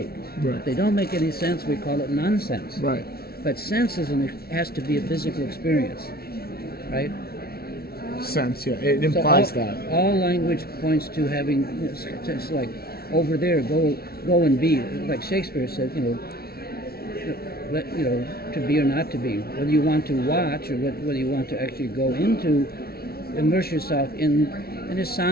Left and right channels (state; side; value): late; right; 0.44 ms